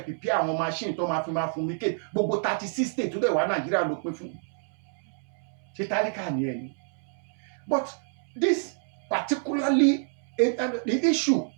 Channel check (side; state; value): left; silent; 59 dB below the other